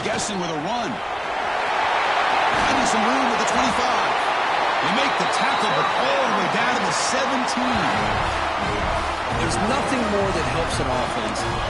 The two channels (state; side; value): identical; both; correlation 1.00